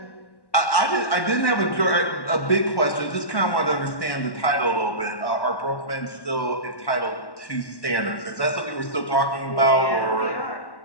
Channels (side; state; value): right; late; 1.1 ms